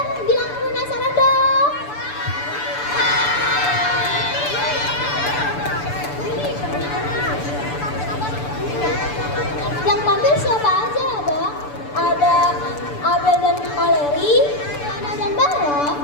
bilang penasaran dong. Yang tampil siapa aja ya, Bang? Ada Abel dan Valeri, Leona dan Bara,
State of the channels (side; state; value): right; late; 6.9 ms